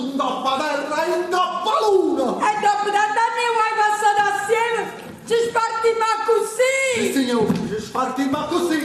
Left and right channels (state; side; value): identical; both; correlation 1.00